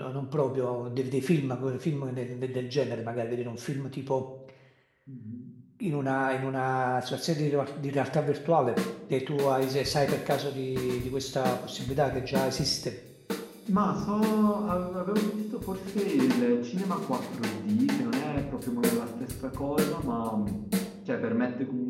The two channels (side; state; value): both; identical; correlation 1.00